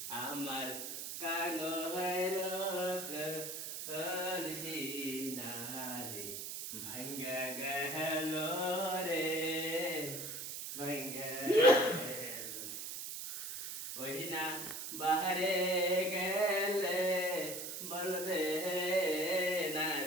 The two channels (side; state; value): right; noise; hiss, 6 dB below the sound